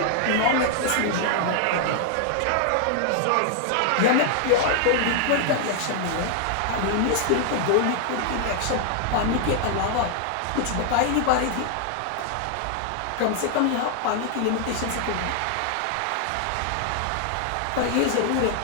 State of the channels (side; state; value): both; different; correlation 0.00